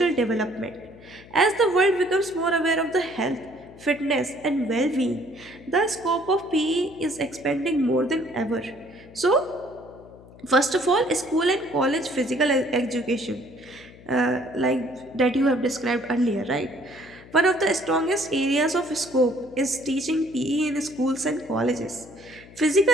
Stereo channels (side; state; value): left; noise; hum, 21 dB below the sound